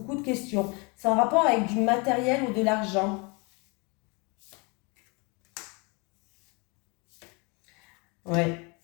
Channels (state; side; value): quieter; right; 30.3 dB